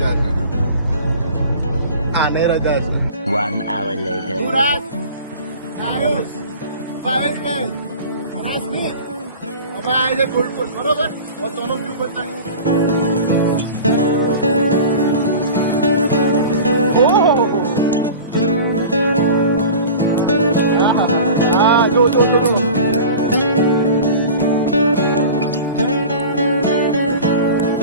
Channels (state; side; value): inverted; both; correlation -0.37